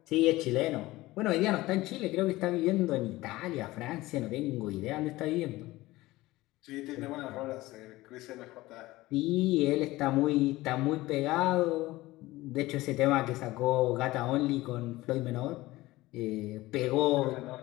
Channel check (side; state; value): right; quieter; 18.6 dB